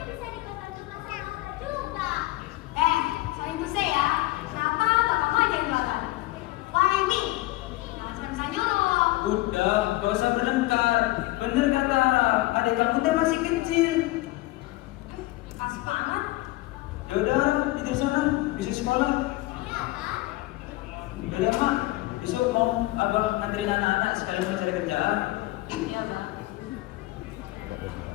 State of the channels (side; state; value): right; quieter; 19.0 dB